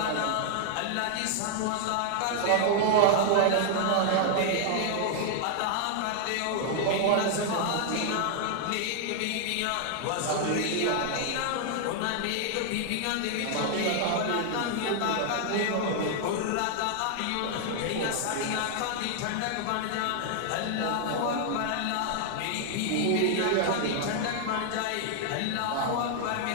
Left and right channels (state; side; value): different; both; correlation 0.00